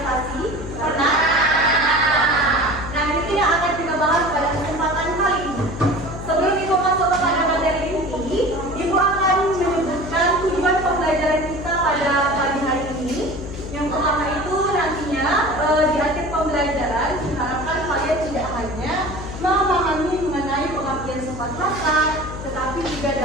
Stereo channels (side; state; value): left; noise; hum, 10 dB below the sound